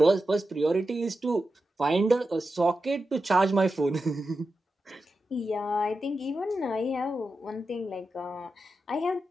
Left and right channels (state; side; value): normal; both; correlation 0.90